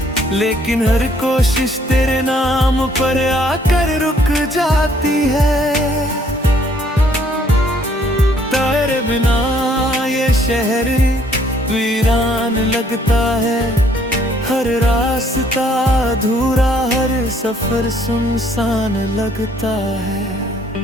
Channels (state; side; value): normal; both; correlation 0.64